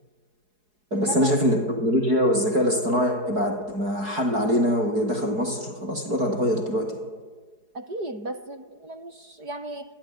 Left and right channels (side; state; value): left; late; 4.8 ms